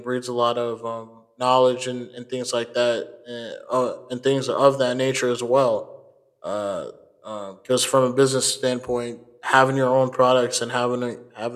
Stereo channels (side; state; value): both; identical; correlation 1.00